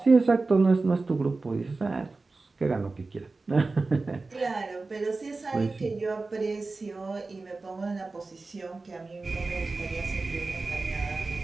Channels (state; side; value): quieter; left; 3.6 dB